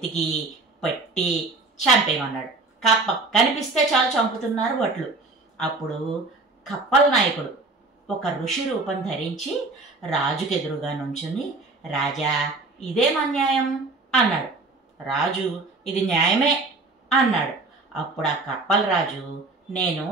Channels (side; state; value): left; quieter; 3.4 dB